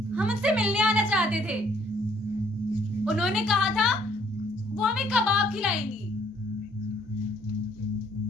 हम उनसे मिलने आना चाहते थे, उन्होंने कहा था वो हमें कबाब खिलाएंगी।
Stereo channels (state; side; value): normal; both; correlation 0.63